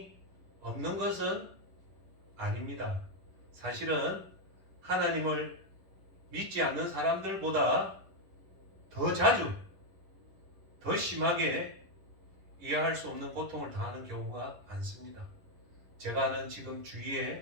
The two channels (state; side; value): late; left; 11 ms